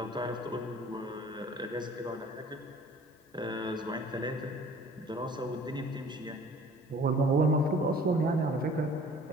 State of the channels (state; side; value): normal; both; correlation 0.50